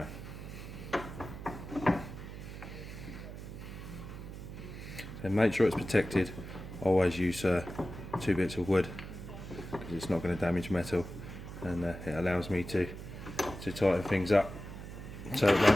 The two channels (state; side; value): noise; right; hum, 11 dB below the sound